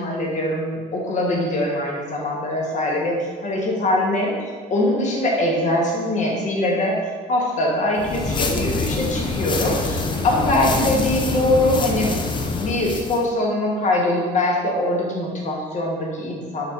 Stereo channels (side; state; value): both; normal; correlation 0.39